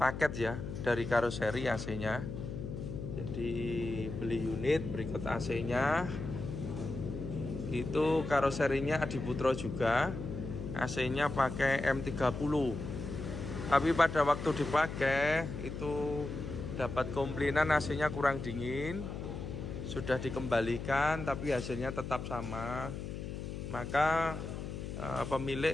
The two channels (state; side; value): noise; left; hum, 7 dB below the sound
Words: ya, dari karoseri AC-nya. Jadi beli unit berikut AC-nya. Itu karoserinya Adiputro juga. AC-nya pakai M30. Tapi pada waktu dipakai itu dapat komplainan AC-nya kurang dingin. Sudah dikembalikan tapi hasilnya tetap sama. Maka pemilik